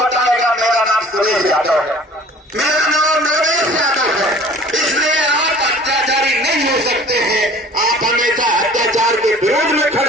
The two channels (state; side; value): normal; both; correlation 0.48